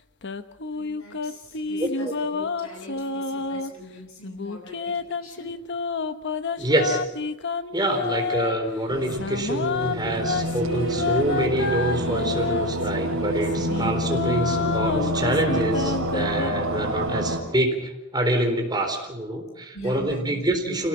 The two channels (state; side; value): normal; both; correlation 0.19